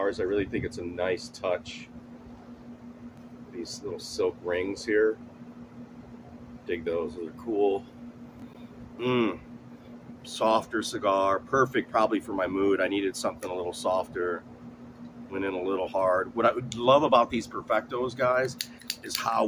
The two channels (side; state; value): both; identical; correlation 1.00